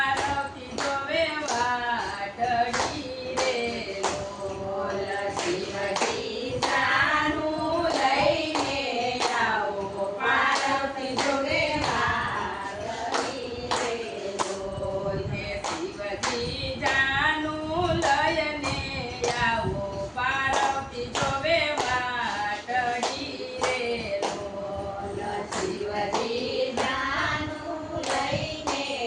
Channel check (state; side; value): identical; both; correlation 1.00